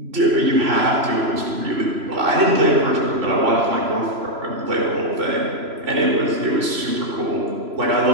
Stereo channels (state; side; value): late; left; 3.0 ms